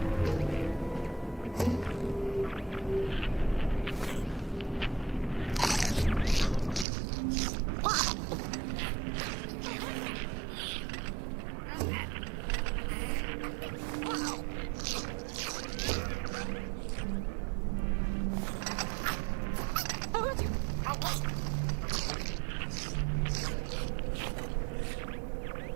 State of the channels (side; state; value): left; drops out; at 6.9 s